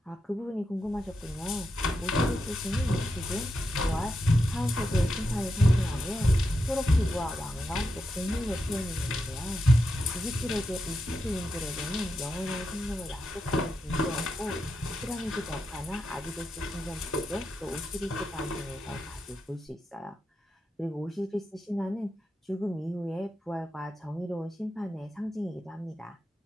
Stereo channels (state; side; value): normal; both; correlation 0.86